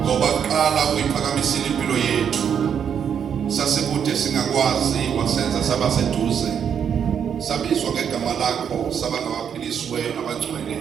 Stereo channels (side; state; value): left; quieter; 8.0 dB